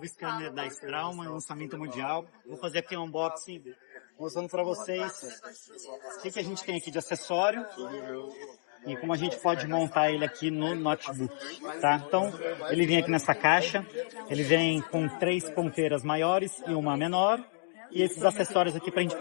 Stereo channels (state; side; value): silent; right; digital silence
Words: scanner da Straumann, lançamento mundial. Vou fazer aqui um unboxing, mostrando para vocês o que a gente tem aqui de acessório e como a gente pode montar ele aqui no notebook, tá? Então, ele vem aqui nessa caixa, ele vem com 3 ponteiras maiores e uma menor, e esses acessórios aqui para a gente